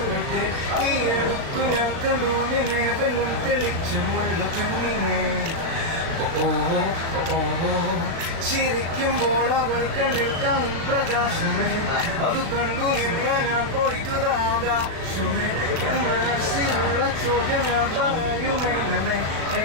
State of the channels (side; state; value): left; late; 36 ms